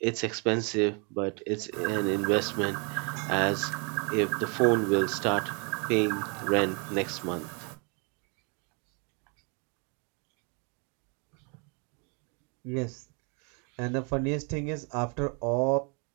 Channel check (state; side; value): quieter; left; 34.2 dB